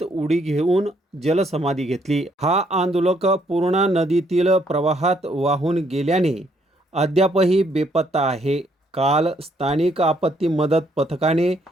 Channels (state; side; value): normal; both; correlation 0.70